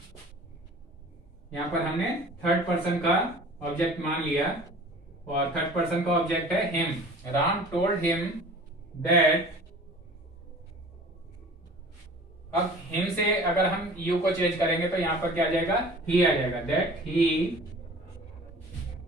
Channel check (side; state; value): both; normal; correlation 0.44